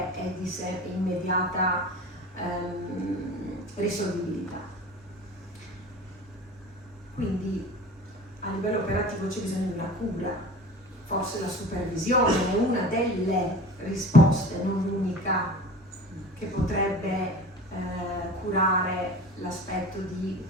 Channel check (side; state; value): both; normal; correlation 0.38